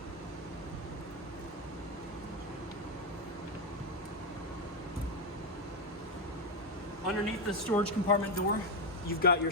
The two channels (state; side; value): normal; both; correlation 0.05